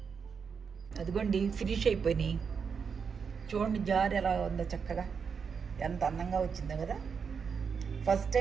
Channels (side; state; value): left; quieter; 6.1 dB